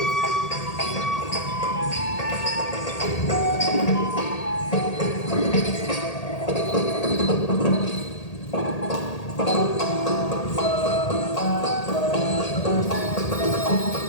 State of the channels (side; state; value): right; late; 1.8 ms